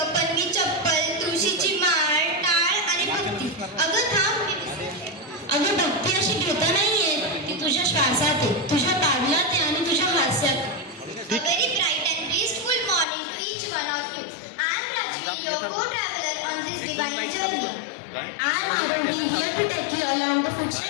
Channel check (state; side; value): drops out; right; at 13.1 s